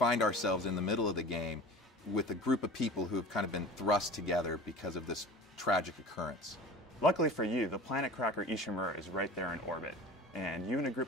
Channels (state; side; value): normal; both; correlation 0.38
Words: ourselves in the middle of the game with a group of people who have kind of been thrust together because of this tragic occurrence. Luckily for you, the planet cracker Ishimura is right there in orbit, and you and a